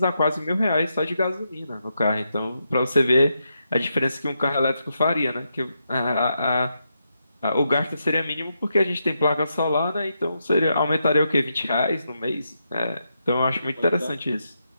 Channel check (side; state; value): both; inverted; correlation -0.83